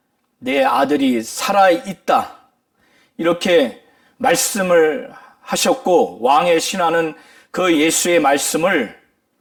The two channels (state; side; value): identical; both; correlation 1.00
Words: 내 아들이 살아있다, 이렇게 말씀을 하셨고, 왕의 신하는 그 예수의 말씀을